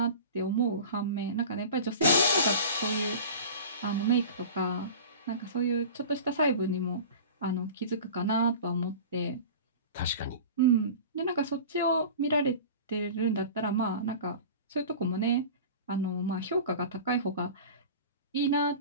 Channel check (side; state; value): both; inverted; correlation -0.37